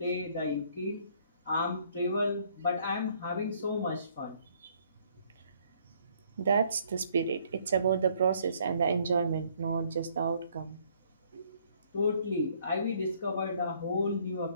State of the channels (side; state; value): both; inverted; correlation -0.64